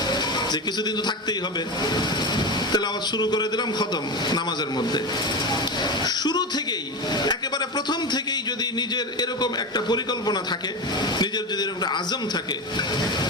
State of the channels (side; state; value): both; normal; correlation 0.20